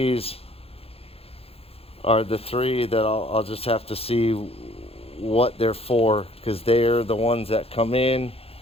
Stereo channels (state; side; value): late; right; 0.28 ms